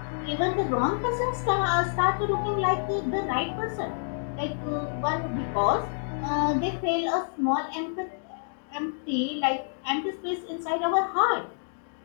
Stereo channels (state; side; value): silent; right; digital silence